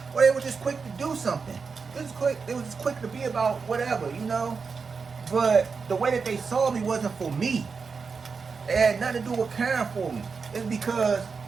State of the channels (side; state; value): left; quieter; 5.1 dB